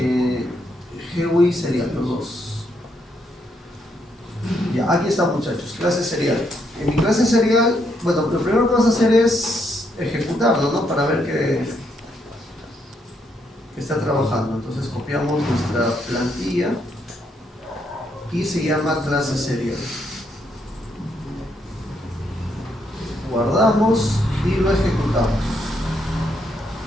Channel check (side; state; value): both; normal; correlation 0.75